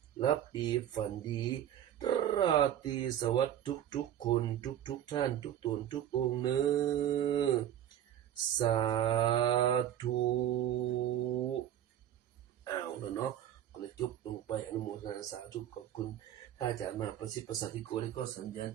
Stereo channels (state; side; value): quieter; left; 10.9 dB